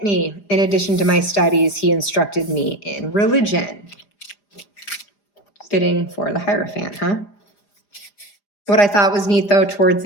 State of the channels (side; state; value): right; late; 4.9 ms